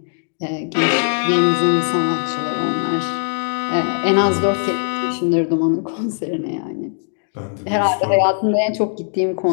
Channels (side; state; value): right; silent; 66 dB below the other